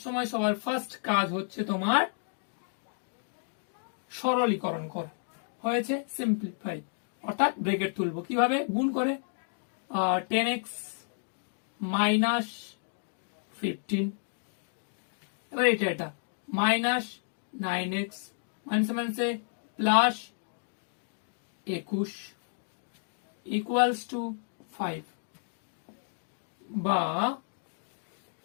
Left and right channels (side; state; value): right; silent; digital silence